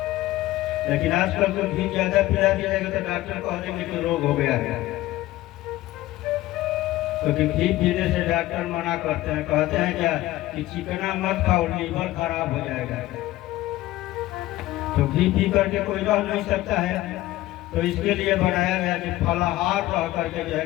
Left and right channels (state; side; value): quieter; right; 16.5 dB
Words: लेकिन आजकल तो घी ज्यादा पिला दिया जाएगा तो डॉक्टर कह देंगे कि रोग हो गया है, क्योंकि घी पीने से डॉक्टर मना करते हैं। कहते हैं क्या कि चिकना मत खाओ, लीवर खराब हो जाएगा। तो घी पी करके कोई रह नहीं सकता है। तो इसके लिए बनाया गया कि फलाहार रह करके जो है